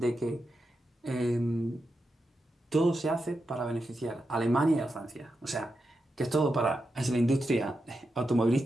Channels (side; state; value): both; normal; correlation 0.88